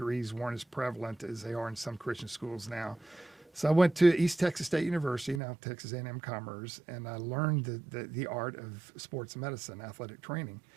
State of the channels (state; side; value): drops out; left; at 5.4 s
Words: weren't as prevalent as they are in some Christian schools now. So I went to East Texas State University, now Texas A&M Commerce, and I learned the art of sports medicine, athletic training.